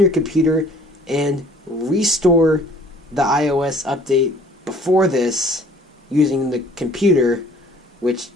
computer, and restore the iOS update before this using the computer, which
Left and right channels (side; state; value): both; normal; correlation 0.54